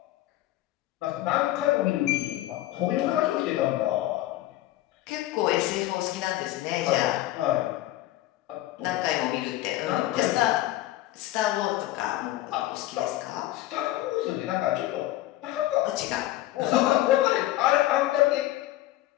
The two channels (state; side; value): quieter; right; 15.6 dB